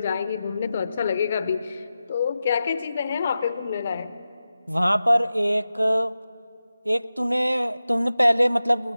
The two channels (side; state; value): both; inverted; correlation -0.93